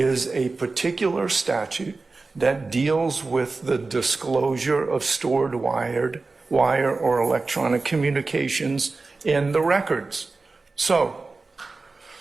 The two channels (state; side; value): quieter; left; 3.8 dB